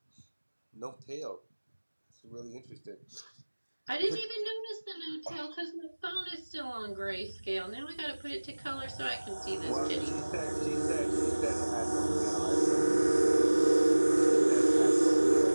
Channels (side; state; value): both; inverted; correlation -1.00